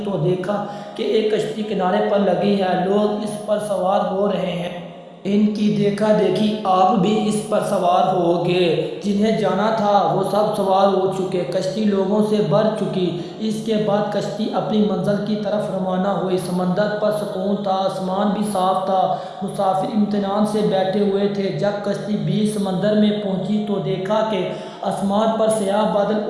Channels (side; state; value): both; identical; correlation 1.00